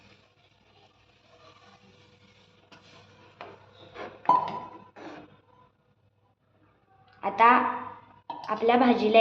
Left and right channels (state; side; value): identical; both; correlation 1.00